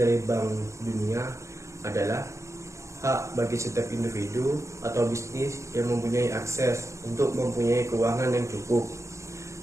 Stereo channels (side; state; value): left; late; 0.14 ms